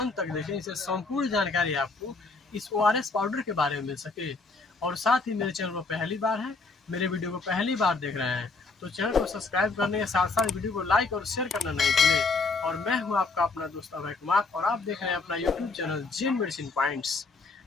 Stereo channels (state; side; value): quieter; right; 3.9 dB